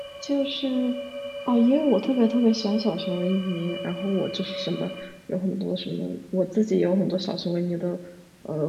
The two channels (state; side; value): identical; both; correlation 1.00